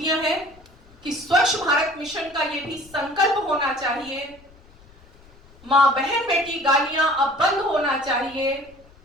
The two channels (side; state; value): left; noise; rumble, 26 dB below the sound